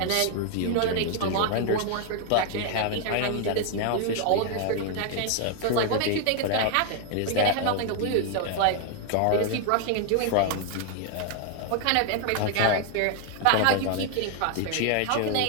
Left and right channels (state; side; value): different; both; correlation 0.00